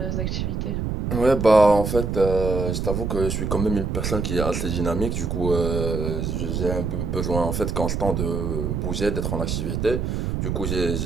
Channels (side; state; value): right; noise; rumble, 1 dB below the sound